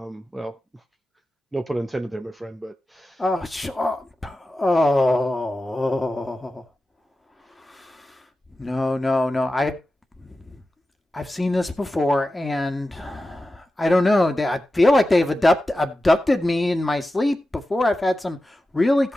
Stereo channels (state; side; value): normal; both; correlation 0.93